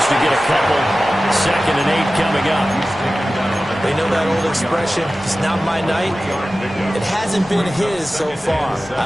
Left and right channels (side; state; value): both; normal; correlation 0.95